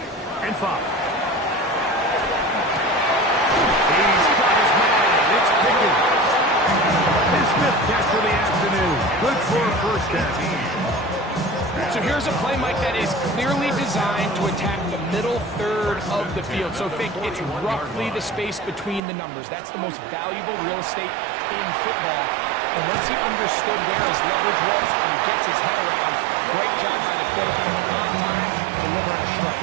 and 5. Catch for the afternoon. Good for a 1st down. So here's a play, Mike, that is clearly designed to attack the middle 3rd of the field. So think it's roughly the space between the numbers. That's the most valuable real estate in football. And once he understood where his leverage was and he gets his head around, great job by the quarterback on time, delivering a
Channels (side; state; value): left; drops out; at 19.0 s